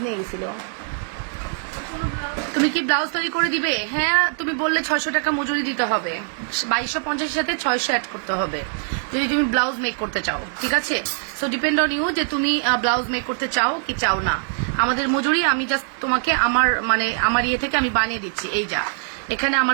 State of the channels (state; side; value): silent; left; 64 dB below the other